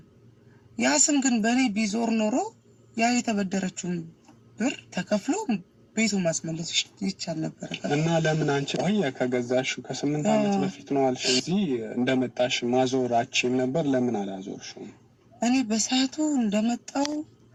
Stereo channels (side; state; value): both; identical; correlation 1.00